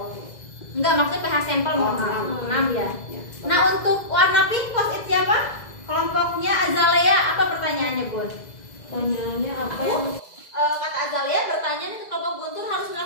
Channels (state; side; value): late; right; 2.0 ms